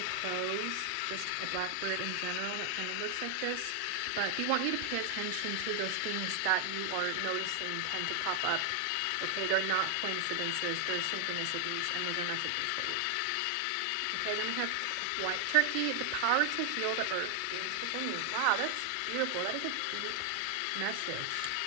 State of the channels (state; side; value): different; both; correlation 0.00